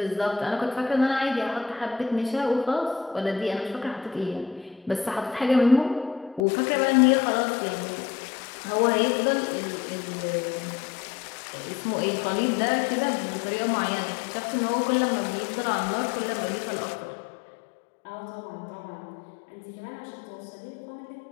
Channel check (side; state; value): right; drops out; at 6.4 s